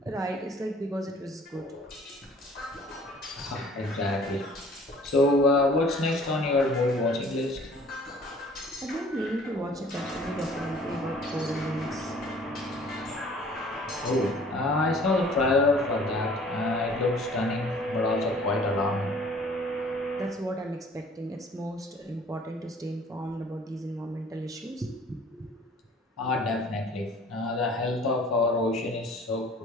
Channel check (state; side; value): normal; both; correlation 0.52